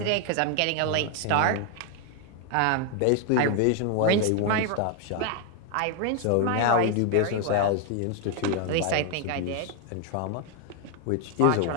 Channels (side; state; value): both; different; correlation 0.00